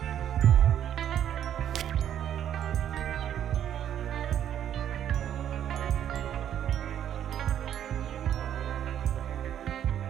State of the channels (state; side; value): quieter; left; 10.2 dB